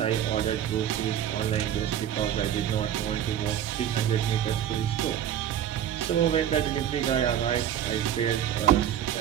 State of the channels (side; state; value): left; quieter; 10.3 dB